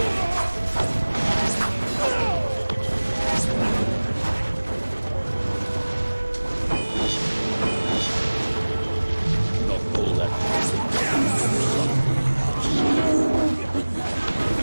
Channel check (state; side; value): inverted; both; correlation -1.00